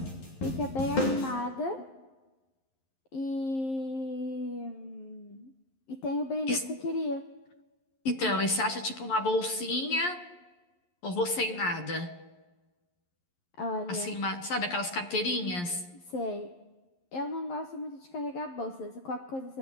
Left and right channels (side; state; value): right; late; 11 ms